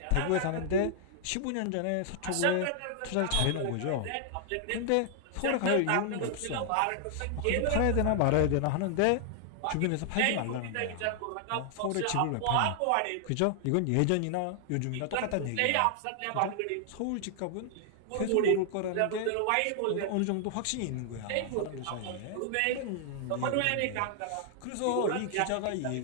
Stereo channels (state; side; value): different; both; correlation 0.00